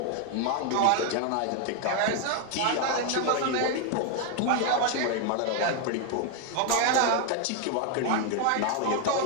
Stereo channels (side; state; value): both; different; correlation 0.01